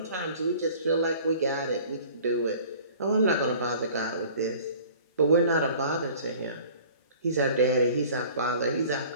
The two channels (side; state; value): both; inverted; correlation -0.47